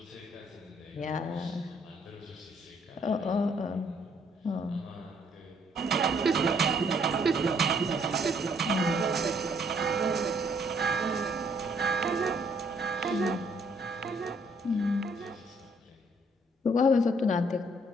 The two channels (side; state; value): both; normal; correlation 0.66